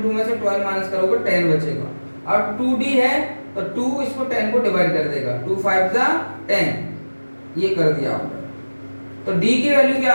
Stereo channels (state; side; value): inverted; both; correlation -1.00